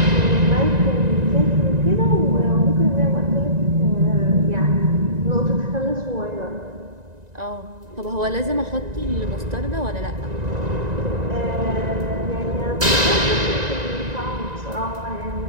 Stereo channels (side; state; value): left; late; 1.9 ms